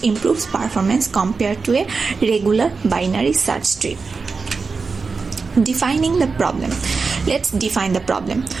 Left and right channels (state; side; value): quieter; left; 4.6 dB